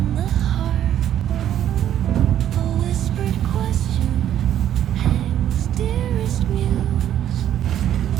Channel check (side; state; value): left; quieter; 10.9 dB